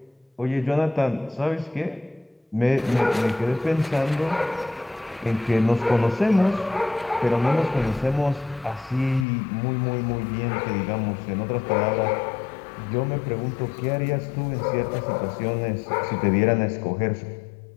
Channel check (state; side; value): drops out; right; at 9.2 s